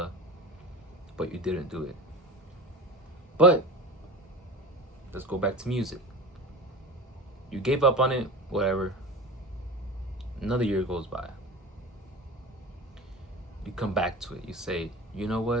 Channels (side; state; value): both; normal; correlation 0.32